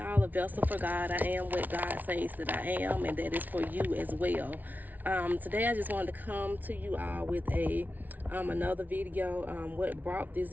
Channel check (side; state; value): left; late; 0.080 ms